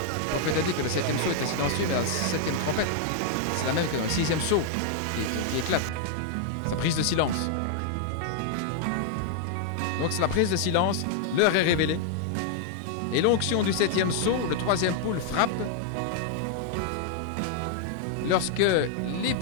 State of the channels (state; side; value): different; both; correlation 0.00